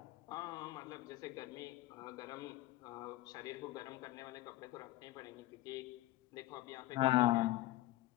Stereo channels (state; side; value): quieter; right; 17.0 dB